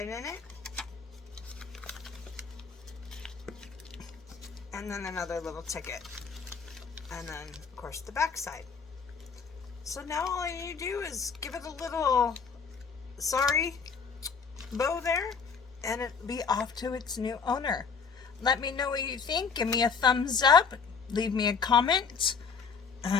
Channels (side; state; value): right; quieter; 5.8 dB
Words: in it. And then another little ticket. And then, of course, the back side. So now all you do is give it a little sorry bow there, and it'll be off to its new owner. Let me know what you think. Give me a thumbs up. Leave me a comment.